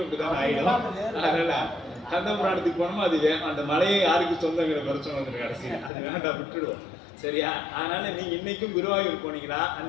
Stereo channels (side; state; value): right; drops out; at 5.9 s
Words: அப்படிதான் ஆயிடும். அதனால கந்தபுராணத்துக்கு போனோமா அது அந்த மலையை யாருக்கு சொந்தங்கிற பிரச்சனை வந்துடும் கடைசியில். அது வேண்டாம், விட்டுடுவோம். சரியா? அதனால நீங்க இன்னைக்கும் குருவாயூர் போனீங்களா,